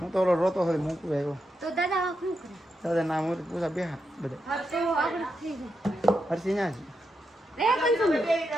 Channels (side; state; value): both; normal; correlation 0.85